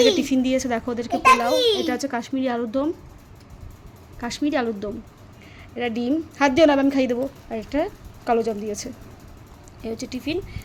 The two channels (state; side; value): identical; both; correlation 1.00